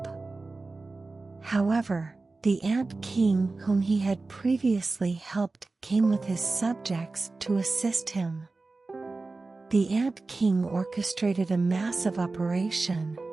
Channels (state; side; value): quieter; left; 3.6 dB